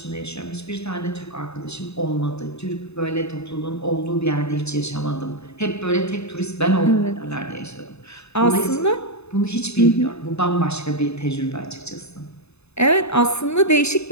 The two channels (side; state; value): right; late; 0.80 ms